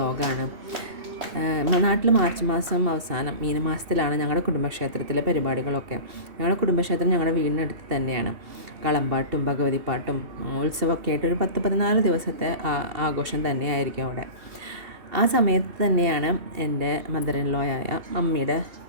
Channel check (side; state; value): left; late; 2.7 ms